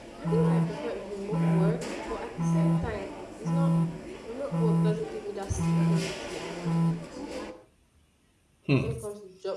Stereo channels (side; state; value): both; identical; correlation 1.00